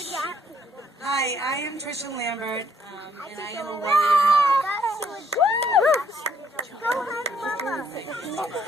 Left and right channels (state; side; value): normal; both; correlation 0.67